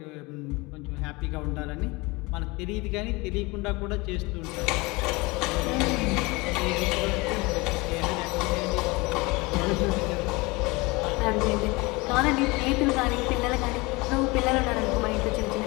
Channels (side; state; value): right; quieter; 24.4 dB